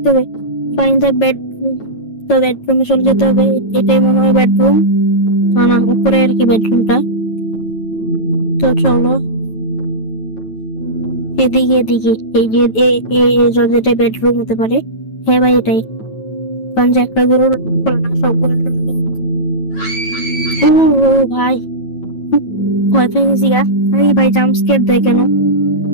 হবে? Fine the bedroom. তো বেডরুমে চলে যেতে হবে, এটাই মনে হয় বেডরুম। না না, উপরে আর কি বেডরুমটা। তো চলো এদিকে এদিকে, এই যে যেটা বেডরুম হতে পারে। হ্যাঁ ভাই এটাই, কারণ যে একটা গরু না, সবগুলো ও ও ভাই, ভয় পেয়ে গেছি গা। আরে ভাই, জাম্প স্কেয়ার দেয় কেন?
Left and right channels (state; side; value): late; right; 9.1 ms